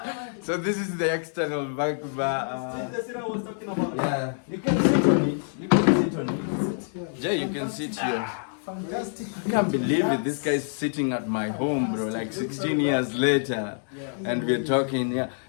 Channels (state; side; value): silent; right; digital silence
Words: So this is the external back bar. That's what I was talking about. Yeah, you can sit on it. Jay, you can sit here. Fantastic. I can't believe it. This guy's sitting at my home, bro. Like 16 years later, and we're talking. Yeah,